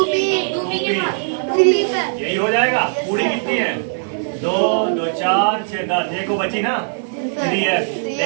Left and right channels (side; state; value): left; silent; digital silence